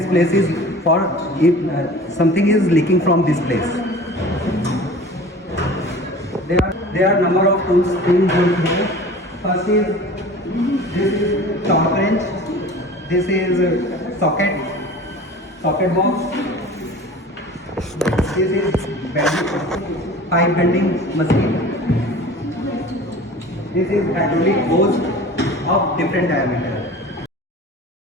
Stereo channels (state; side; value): normal; both; correlation 0.41